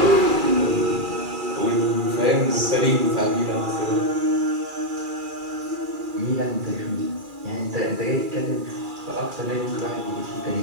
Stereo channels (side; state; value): left; late; 2.4 ms